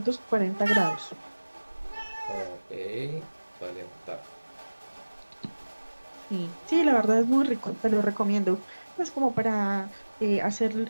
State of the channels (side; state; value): both; inverted; correlation -1.00